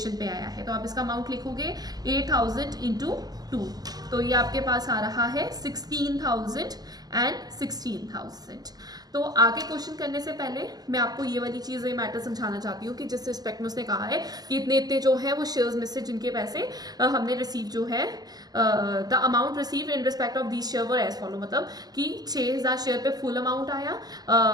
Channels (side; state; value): left; late; 0.19 ms